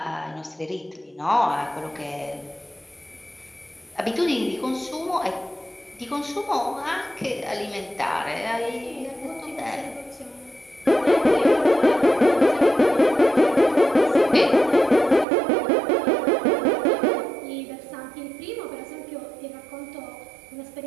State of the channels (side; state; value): left; drops out; at 15.2 s